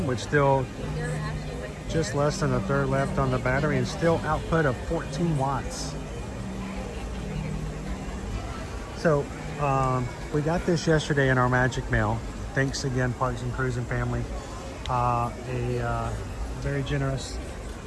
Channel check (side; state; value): both; identical; correlation 1.00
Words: with still just less than a third left on the battery and still output of 14 watts. So we got this yesterday in our magic mail. Thanks again, Parks and Cruising family. A very generous